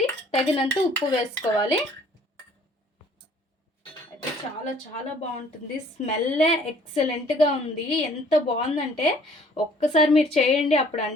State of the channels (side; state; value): both; normal; correlation 0.57